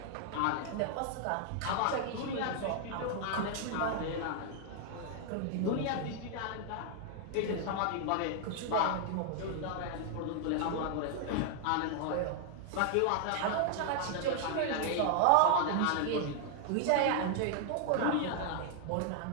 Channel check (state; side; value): different; both; correlation 0.00